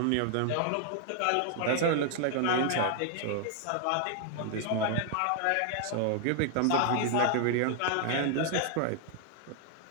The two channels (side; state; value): both; different; correlation 0.00